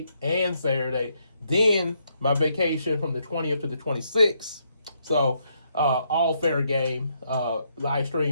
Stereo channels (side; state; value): both; inverted; correlation -0.75